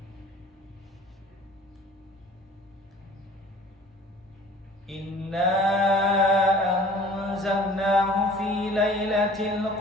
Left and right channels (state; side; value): normal; both; correlation 0.48